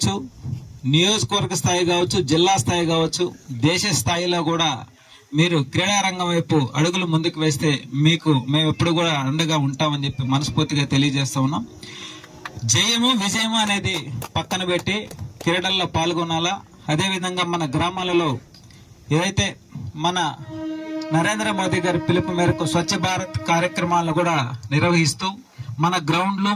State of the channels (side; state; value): both; identical; correlation 1.00